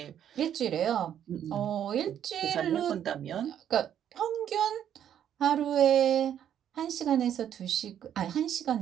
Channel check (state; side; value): quieter; left; 9.9 dB